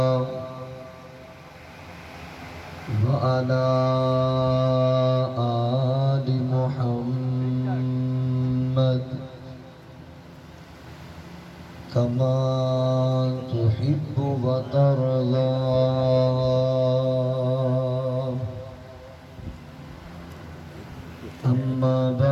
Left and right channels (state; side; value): identical; both; correlation 1.00